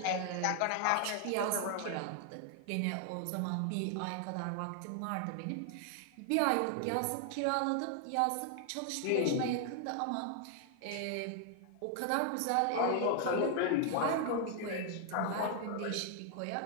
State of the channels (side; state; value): both; different; correlation 0.00